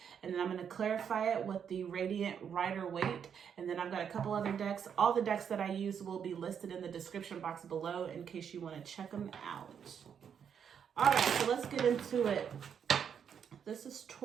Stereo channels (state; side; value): quieter; left; 7.7 dB